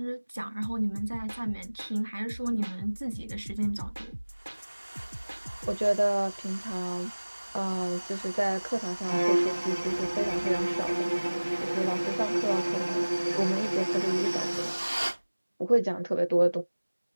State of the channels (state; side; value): inverted; both; correlation -1.00